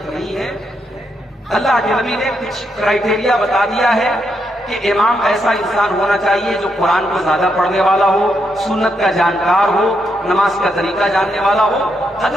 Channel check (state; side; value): normal; both; correlation 0.80